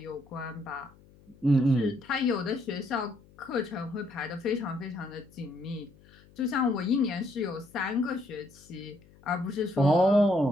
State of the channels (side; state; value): left; noise; hum, 26 dB below the sound